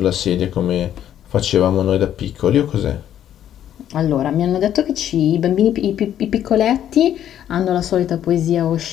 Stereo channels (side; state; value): right; quieter; 10.7 dB